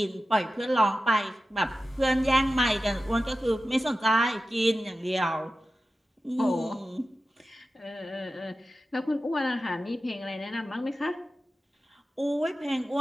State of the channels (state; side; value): normal; both; correlation 0.93